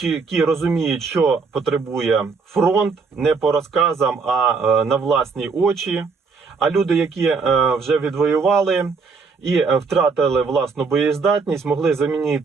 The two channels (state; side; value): quieter; left; 4.8 dB